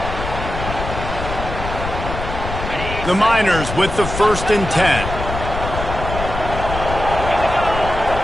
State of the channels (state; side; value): noise; left; rumble, 6 dB below the sound